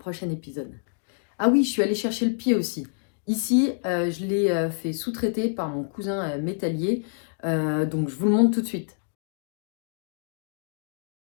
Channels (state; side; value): silent; right; digital silence